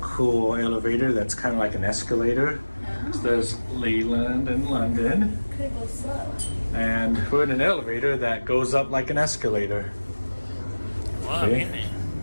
elevator that's kind of like an escalator. So there's Leland and London. Could go slow. And we're in an elevator that goes up like an escalator. Wow, See? really?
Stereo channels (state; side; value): inverted; both; correlation -1.00